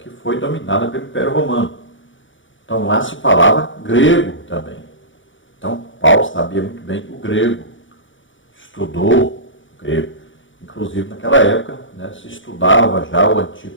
foi dominada pelo Império Romano. Então lá se falava grego também. Então Paulo sabia muito bem o grego, estudou o grego. Inclusive naquela época se estudava já o Antigo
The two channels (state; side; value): late; right; 0.56 ms